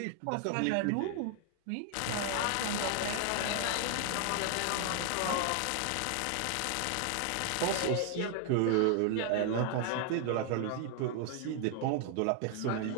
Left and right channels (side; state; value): both; different; correlation 0.00